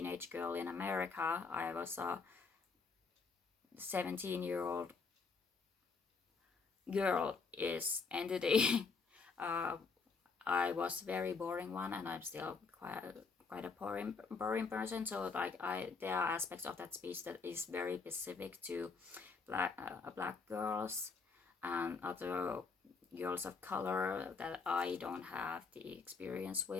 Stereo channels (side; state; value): right; quieter; 4.8 dB